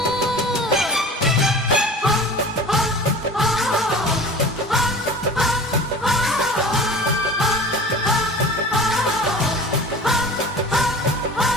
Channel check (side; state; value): both; normal; correlation 0.39